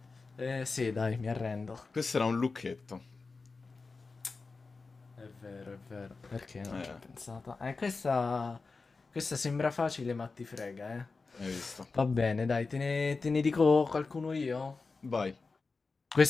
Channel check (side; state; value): right; quieter; 4.1 dB